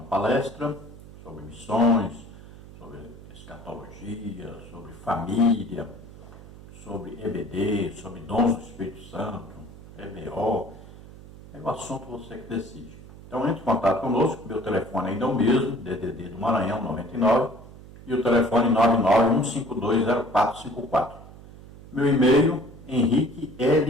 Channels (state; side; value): noise; right; hum, 18 dB below the sound